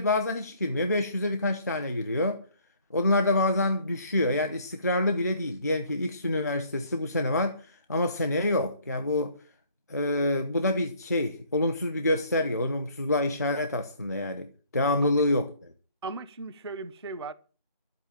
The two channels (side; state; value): both; inverted; correlation -0.60